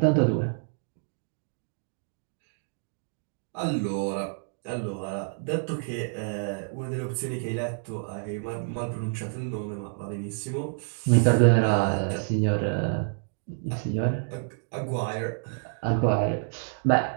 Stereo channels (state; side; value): silent; left; digital silence